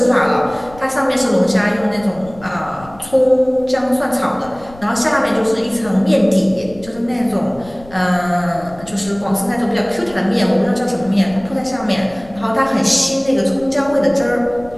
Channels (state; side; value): noise; left; rumble, 21 dB below the sound